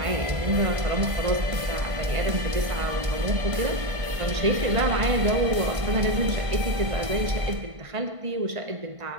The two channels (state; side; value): late; left; 1.5 ms